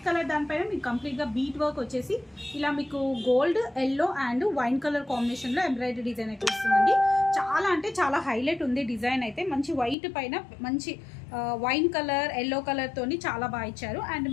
దానిపైన మీకు కంప్లీట్గా బీట్ వర్క్ వచ్చేసి ఇలా మీకు gold, yellow and wine colour కాంబినేషన్లో ఎంబ్రాయిడరీ డిజైన్ అయితే వస్తుందండి. చాలా అంటే చాలా హైలైట్ ఉంది డిజైన్ అయితే. మంచి వైట్ పైన మంచి వైన్ కలర్, ఎల్లో కలర్ తోని చాలా బాగా ఇచ్చారు. అండ్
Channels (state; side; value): drops out; right; at 10.0 s